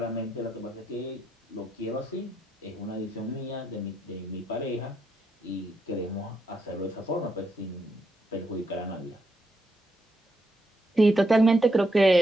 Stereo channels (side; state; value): both; normal; correlation 0.80